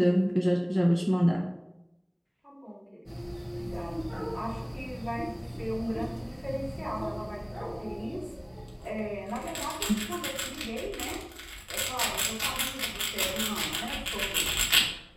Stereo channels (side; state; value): both; identical; correlation 1.00